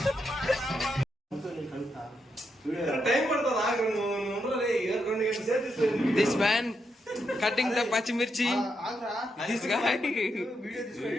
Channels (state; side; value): normal; both; correlation 0.82